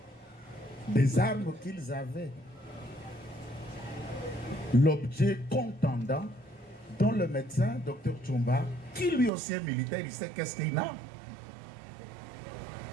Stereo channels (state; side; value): drops out; left; at 9.3 s